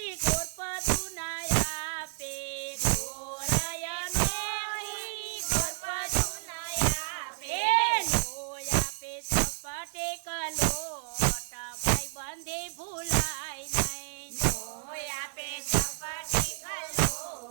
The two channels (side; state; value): left; silent; digital silence